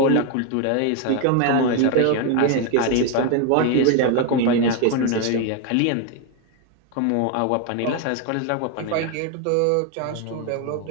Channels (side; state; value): both; different; correlation 0.01